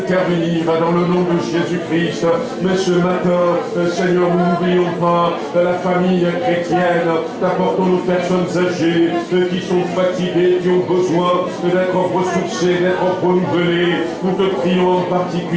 dans le nom de Jésus-Christ. Mais ce matin, Seigneur, nous n'oublions pas la famille chrétienne. T'apportons nos personnes âgées qui sont fatiguées, qui ont besoin d'être ressourcées, d'être renouvelées. Nous te prions en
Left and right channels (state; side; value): identical; both; correlation 1.00